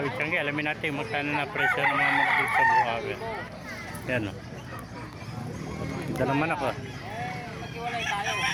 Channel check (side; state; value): both; identical; correlation 1.00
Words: Tiyanggi, alamin natin magkano na presyo ng mga manok dito sa Bukawi. Yan o. Ito naman ako. Maghiwalay tayo.